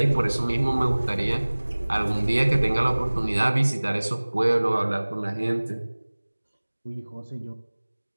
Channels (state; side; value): inverted; both; correlation -1.00